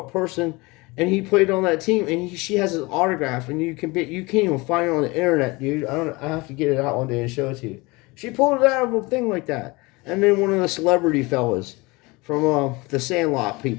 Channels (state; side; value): quieter; right; 24.2 dB